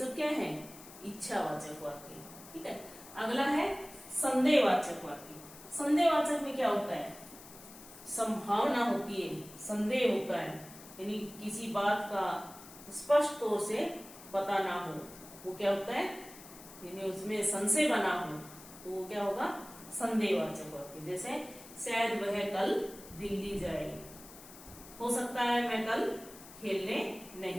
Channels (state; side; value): noise; left; hiss, 18 dB below the sound